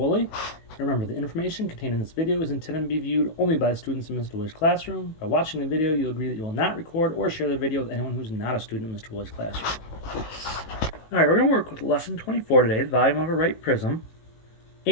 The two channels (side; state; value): right; late; 18 ms